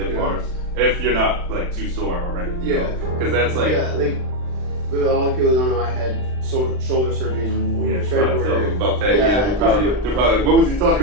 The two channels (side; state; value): left; late; 39 ms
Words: bars, if you're not like too sore already. Yeah. Because that's like. Yeah, like, with all the people that don't know, I had shoulder surgery in Oh yeah, try to tell them February. about that. Yeah, Yeah, they're probably like, what was he